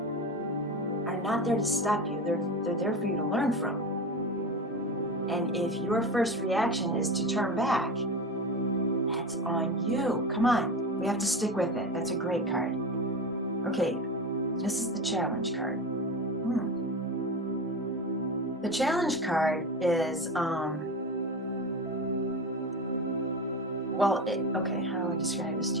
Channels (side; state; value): both; normal; correlation 0.25